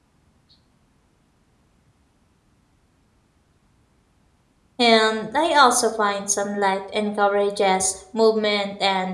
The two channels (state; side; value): identical; both; correlation 1.00